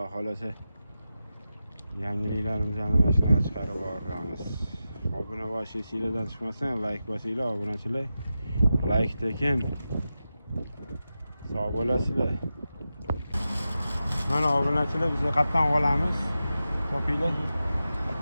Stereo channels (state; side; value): inverted; both; correlation -0.91